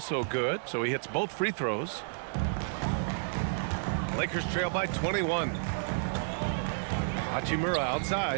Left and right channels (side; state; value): left; silent; 57 dB below the other